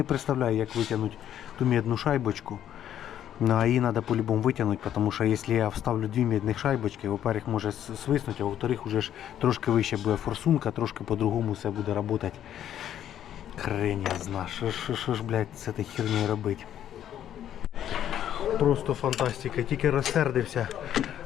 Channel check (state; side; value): quieter; right; 10.6 dB